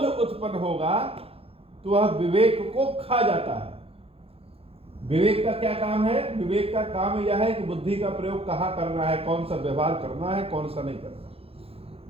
उत्पन्न होगा तो वह विवेक को खा जाता है। विवेक का क्या काम है? विवेक का काम यह है कि बुद्धि का प्रयोग कहां करना है, कौन सा व्यवहार करना है, कौन सा नहीं करना।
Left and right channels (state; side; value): late; left; 0.28 ms